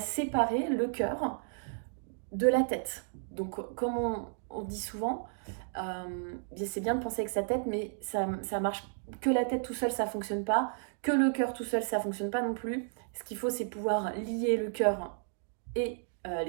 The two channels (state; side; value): silent; left; digital silence